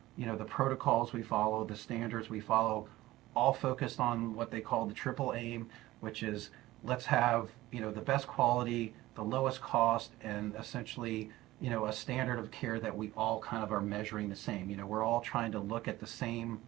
the protocols we follow, the standards we follow, all focused on what they call the triple aim, which is let's have, the best quality, the lowest cost, and essentially, a standard of care that we all kind of are measuring the same. We're all trying to look at the same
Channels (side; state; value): left; quieter; 17.1 dB